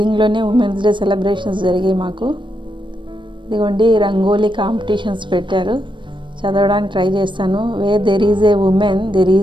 ఉమెన్స్ డే సెలబ్రేషన్స్ జరిగాయి మాకు. ఇదిగోండి రంగోలీ కాంపిటీషన్స్ పెట్టారు. చదవడానికి ట్రై చేస్తాను. There is a woman there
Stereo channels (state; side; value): late; left; 0.23 ms